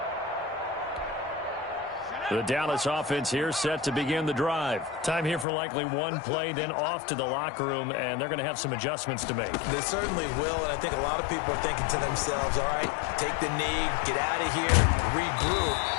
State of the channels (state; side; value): drops out; right; at 5.5 s